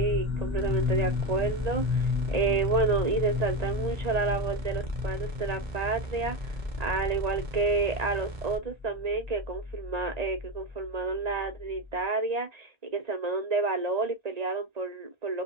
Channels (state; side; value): late; left; 1.9 ms